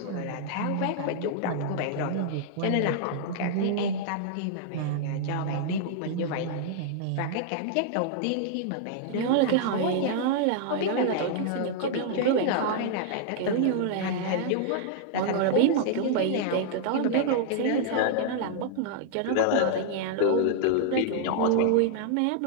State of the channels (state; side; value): different; both; correlation -0.01